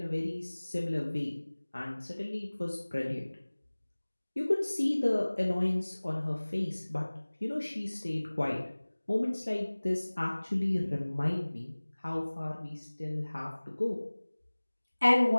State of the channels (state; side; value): inverted; both; correlation -1.00